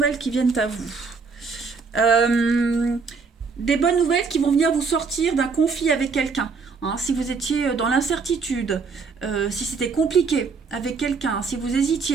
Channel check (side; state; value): left; quieter; 4.9 dB